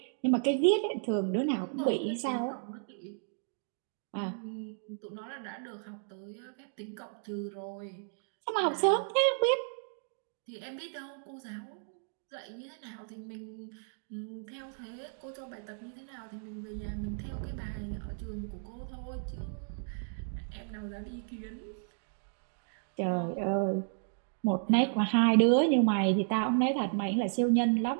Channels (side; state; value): left; silent; digital silence